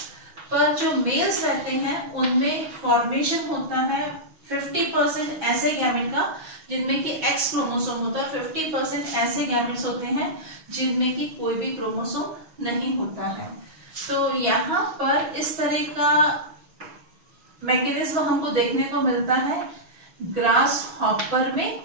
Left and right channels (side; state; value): left; late; 6.3 ms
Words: पर जो मेल्स रहते हैं उनमें फॉर्मेशन होता है 50% ऐसे गैमेट का जिनमें कि X क्रोमोसोम होता है, 50% ऐसे गैमेट्स होते हैं जिनमें कि कोई भी क्रोमोसोम नहीं होता है। तो यहाँ पर इस तरह का मैकेनिज्म हमको देखने को मिलता है ग्रास हॉपर में।